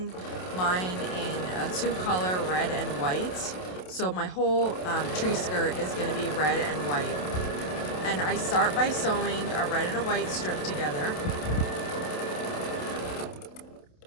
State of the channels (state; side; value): late; right; 27 ms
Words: mine in a 2-color red and white. So my whole tree skirt is going to be red and white, and I start by sewing a red and a white strip together.